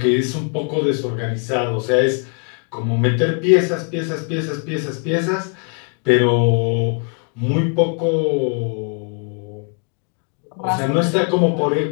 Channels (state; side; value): quieter; right; 38.9 dB